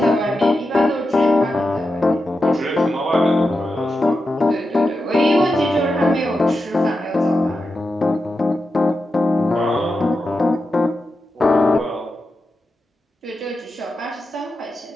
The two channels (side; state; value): both; normal; correlation 0.89